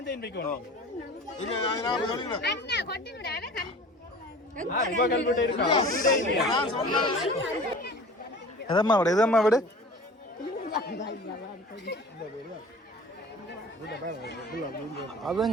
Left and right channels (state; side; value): normal; both; correlation 0.42